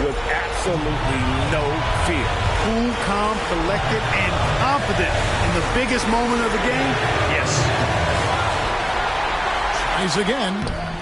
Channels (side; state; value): both; identical; correlation 1.00